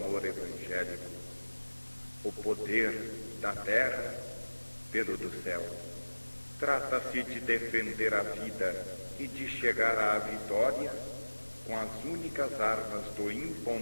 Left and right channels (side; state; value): both; inverted; correlation -1.00